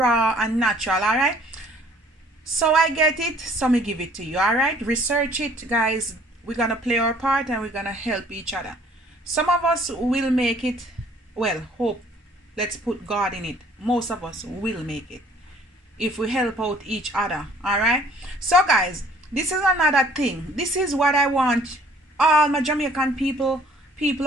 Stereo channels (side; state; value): both; normal; correlation 0.57